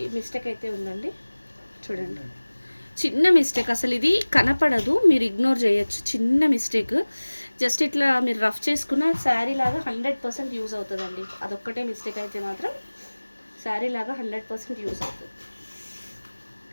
మిస్టేక్ అయితే ఉందండి. చూడండి, చిన్న మిస్టేక్, అసలు ఇది కనపడదు, మీరు ఇగ్నోర్ చేయొచ్చు. చిన్న మిస్టేక్, జస్ట్ ఇట్లా మీరు రఫ్ చేసుకున్న శారీ లాగా 100% యూజ్ అవుతుందండి. అదొక్కటే మిస్టేక్ అయితే మాత్రం శారీ లాగా 100% యూజ్ అవుతుంది.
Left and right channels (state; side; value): inverted; both; correlation -1.00